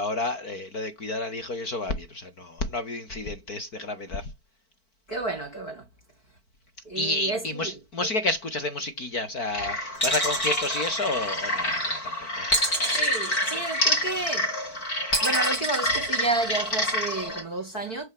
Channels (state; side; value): late; right; 4.5 ms